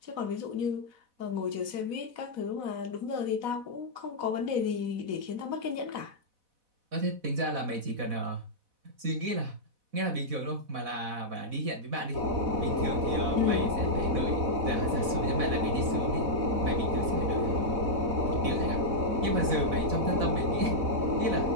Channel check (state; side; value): late; left; 4.1 ms